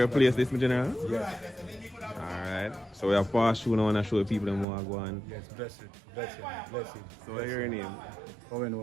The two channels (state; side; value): drops out; left; at 4.7 s